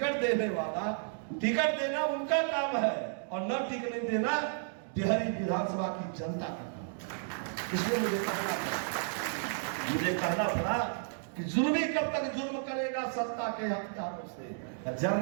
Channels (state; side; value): silent; left; digital silence